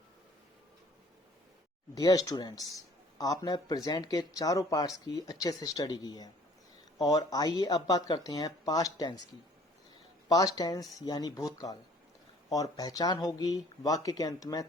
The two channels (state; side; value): normal; both; correlation 0.55